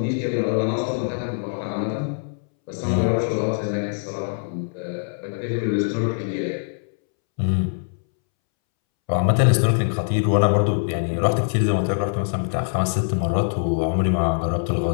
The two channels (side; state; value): right; silent; 63 dB below the other